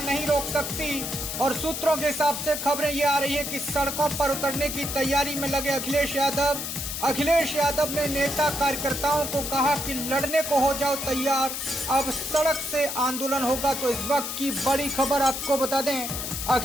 नहीं रोक सकती और सूत्रों के हिसाब से खबरें ये आ रही है कि सड़कों पर उतरने की तैयारी में लगे अखिलेश यादव। अखिलेश यादव ने नेता कार्यकर्ताओं को कहा कि लड़ने को हो जाओ तैयार, अब सड़क से आंदोलन होगा। तो इस वक्त की बड़ी खबर आपको बता दें,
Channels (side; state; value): left; noise; hiss, 4 dB below the sound